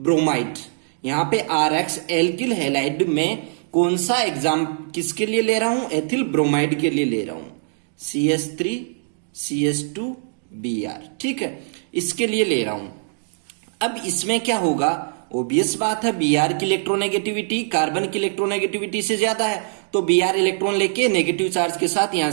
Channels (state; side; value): silent; left; digital silence